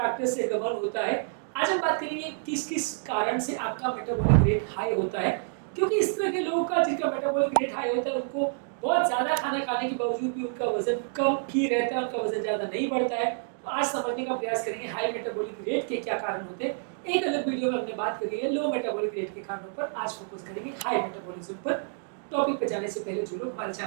से गवर्न होता है। आज हम बात करेंगे किस किस कारण से आपका मेटाबॉलिक रेट हाई होता है, क्योंकि इस तरह के लोगों का जिनका मेटाबॉलिक रेट हाई होता है उनको बहुत ज़्यादा खाना खाने के बावजूद भी उनका वजन कम ही रहता है, उनका वजन ज़्यादा नहीं बढ़ता है। तो आज समझने का प्रयास करेंगे हाई मेटाबॉलिक रेट के क्या कारण होते हैं। एक अलग वीडियो में हमने बात करी है लो मेटाबॉलिक रेट के कारणों पर, आज फोकस करेंगे हाई मेटाबॉलिज्म पर। टॉपिक पर जाने से पहले जो लोग हमारे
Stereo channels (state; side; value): silent; left; digital silence